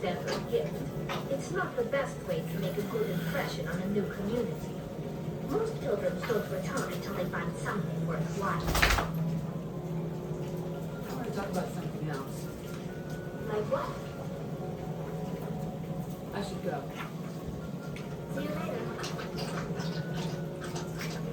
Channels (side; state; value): both; identical; correlation 1.00